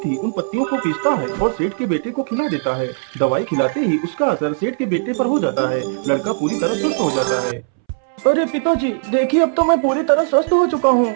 ही उन पत्तियों को पीसता है और सेठ के बेटे को खिला देता है। दवाई खिलाते ही उसका असर सेठ के बेटे पर हो जाता है। लड़का पूरी तरह स्वस्थ हो जाता है। अरे पिताजी, देखिए अब तो मैं पूरी तरह स्वस्थ हो चुका हूँ।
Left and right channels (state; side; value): silent; left; 67 dB below the other